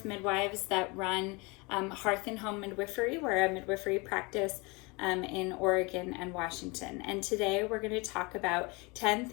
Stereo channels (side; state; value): right; quieter; 27.2 dB